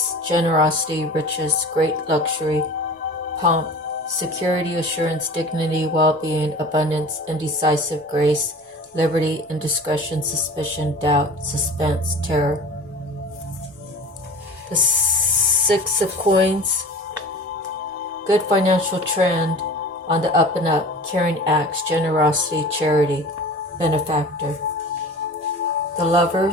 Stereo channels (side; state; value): both; normal; correlation 0.39